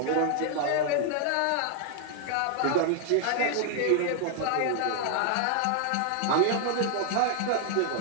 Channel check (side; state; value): both; different; correlation 0.00